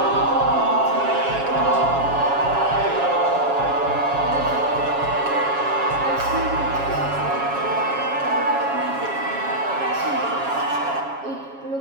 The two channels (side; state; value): left; late; 7.2 ms